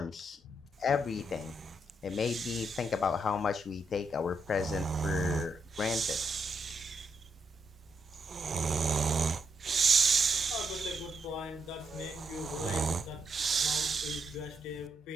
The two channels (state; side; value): normal; both; correlation 0.79